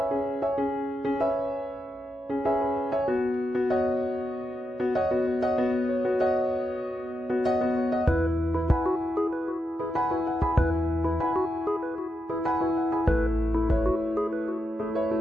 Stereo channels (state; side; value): normal; both; correlation 0.86